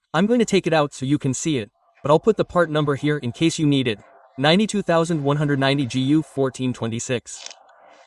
I'm going to take it out so you can see it, but I'll put the part number here in case you need it. 92190 GU 1426.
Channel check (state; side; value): identical; both; correlation 1.00